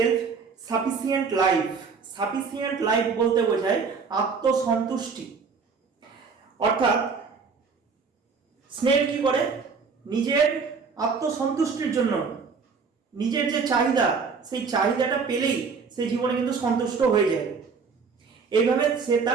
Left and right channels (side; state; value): left; quieter; 5.2 dB